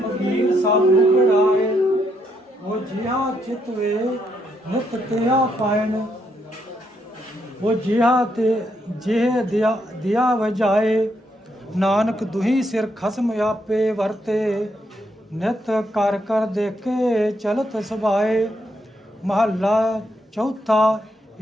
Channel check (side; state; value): both; normal; correlation 0.77